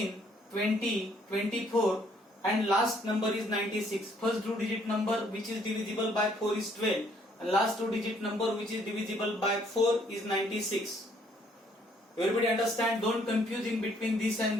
20, 24, and last number is 96. First two-digit number which is divisible by 4 is 12, and last two-digit number which is divisible by 4 is 96. Everybody understand? Don't confuse in between this and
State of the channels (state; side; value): normal; both; correlation 0.65